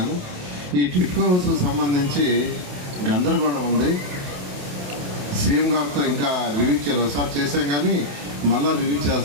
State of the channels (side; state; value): left; late; 28 ms